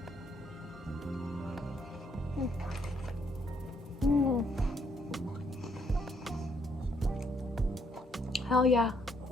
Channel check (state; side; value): normal; both; correlation 0.71